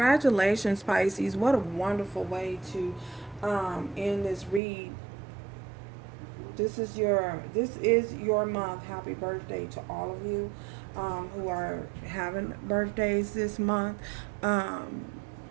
Pisces. What a wonderful way to end this read. This is your month. Happy birthday to all of you who are having birthdays this month.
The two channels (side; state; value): left; drops out; at 4.6 s